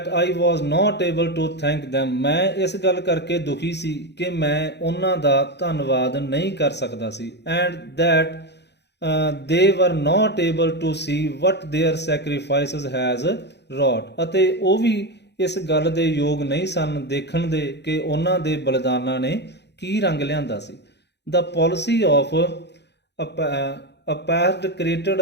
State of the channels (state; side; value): late; right; 0.50 ms